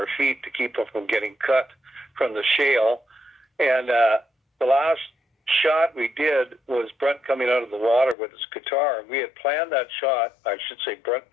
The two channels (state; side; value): drops out; right; at 8.2 s